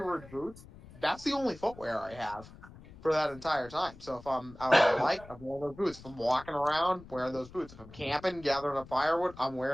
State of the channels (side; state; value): left; noise; rumble, 19 dB below the sound